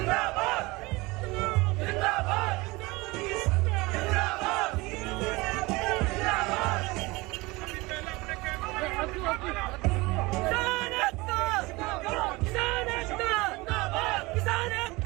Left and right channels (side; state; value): left; quieter; 22.9 dB